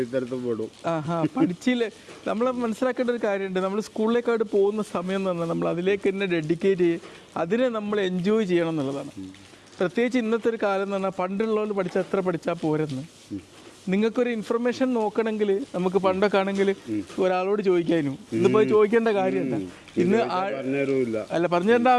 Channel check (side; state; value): both; identical; correlation 1.00